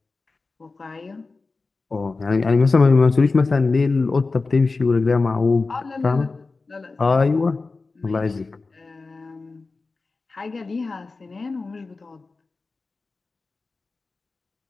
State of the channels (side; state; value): right; quieter; 3.9 dB